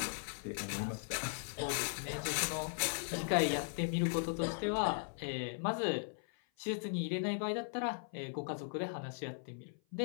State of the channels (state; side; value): silent; right; 52 dB below the other